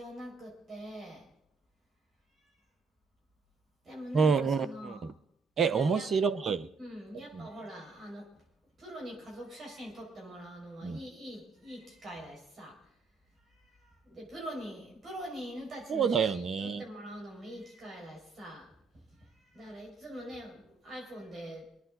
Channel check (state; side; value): quieter; left; 4.8 dB